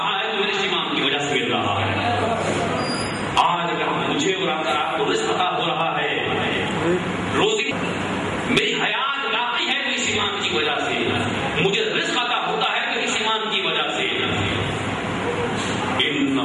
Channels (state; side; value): identical; both; correlation 1.00